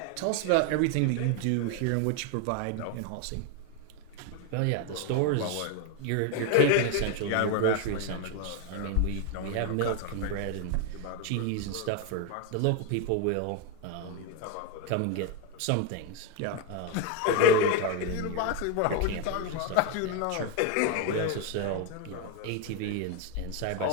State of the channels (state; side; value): different; both; correlation 0.01